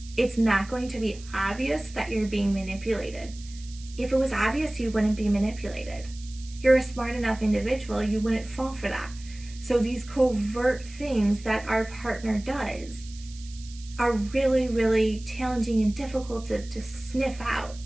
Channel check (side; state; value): right; noise; hiss, 19 dB below the sound